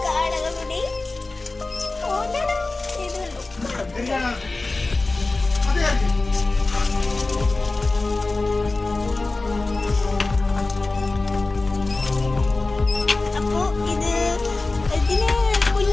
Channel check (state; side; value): quieter; right; 3.3 dB